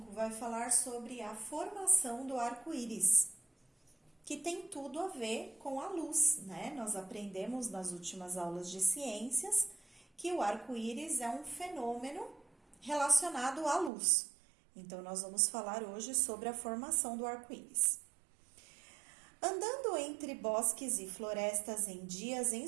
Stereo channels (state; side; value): drops out; left; at 13.9 s